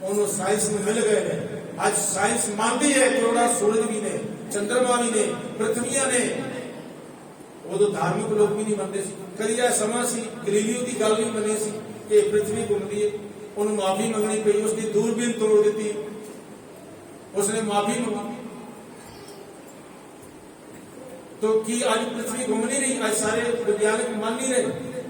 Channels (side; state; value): both; identical; correlation 1.00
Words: ਉਹਨੂੰ ਸਾਇੰਸ ਨੂੰ ਮਿਲ ਗਏ ਨੇ। ਅੱਜ ਸਾਇੰਸ ਮੰਨਦੀ ਹੈ ਕਰੋੜਾ ਸੂਰਜ ਵੀ ਨੇ, ਚੰਦਰਮਾ ਵੀ ਨੇ, ਪ੍ਰਿਥਵੀਆਂ ਨੇ। ਉਦੋਂ ਧਾਰਮਿਕ ਲੋਕ ਵੀ ਨਹੀਂ ਮੰਨਦੇ ਸੀ। ਕਦੀ ਇਹ ਸਮਾਂ ਸੀ ਗਲੀਲੀਓ ਦੀ ਗੱਲ ਨਹੀਂ ਮੰਨੀ ਸੀ ਕਿ ਪ੍ਰਿਥਵੀ ਘੁੰਮਦੀ ਹੈ। ਉਹਨੂੰ ਮਾਫੀ ਮੰਗਣੀ ਪਈ, ਉਸਦੀ ਦੂਰਬੀਨ ਤੋੜ ਦਿੱਤੀ, ਉਸਨੇ ਮਾਫੀ ਮੰਗੀ। तो की आज पृथ्वी घूम नहीं रही? आज सारे वैज्ञानिक मान नहीं रहे।